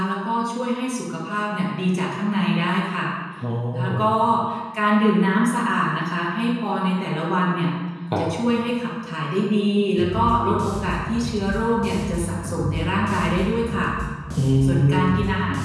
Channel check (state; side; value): identical; both; correlation 1.00